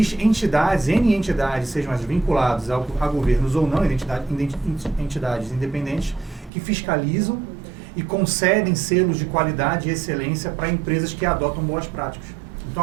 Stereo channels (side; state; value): left; drops out; at 6.5 s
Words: N entidades, sejam as vinculadas a governos ou não, entidades independentes, que fiscalizam e concedem selos de qualidade e excelência para empresas que adotam boas práticas. Então